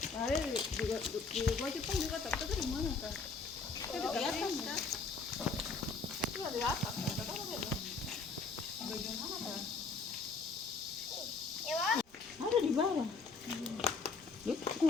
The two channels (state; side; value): quieter; right; 4.5 dB